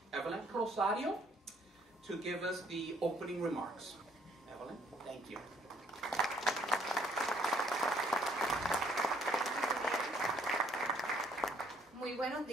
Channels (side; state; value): both; normal; correlation 0.64